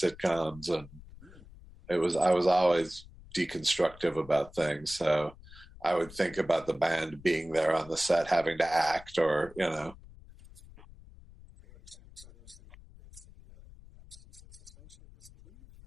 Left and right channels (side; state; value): left; noise; rumble, 20 dB below the sound